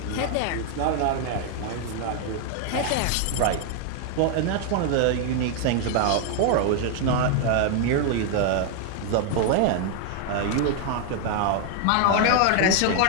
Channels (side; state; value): both; different; correlation 0.00